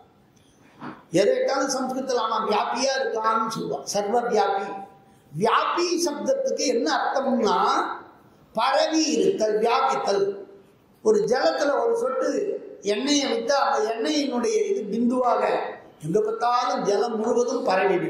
எதைட்டாலும் சம்ஸ்கிருதத்தில் ஆனா வியாபியா இருக்கான்னு சொல்லுவான், சர்வ வியாபி. வியாபி சப்தத்துக்கு என்ன அர்த்தம்னா பரவி இருத்தல், வியாபித்தல். ஒரு ஜலத்துல ஒரு சொட்டு எண்ணெயை விட்டா அந்த எண்ணெயினுடைய இது பிந்துவாக எங்க பார்த்தாலும் ஜலம் முழுவதும் பரவி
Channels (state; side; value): identical; both; correlation 1.00